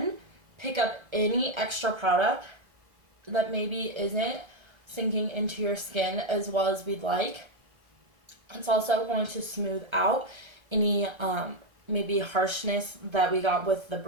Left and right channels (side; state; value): left; late; 1.3 ms